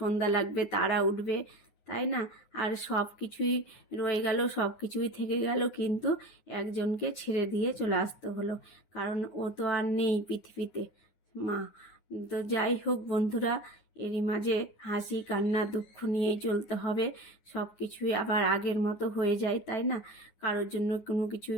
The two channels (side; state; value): right; late; 9.6 ms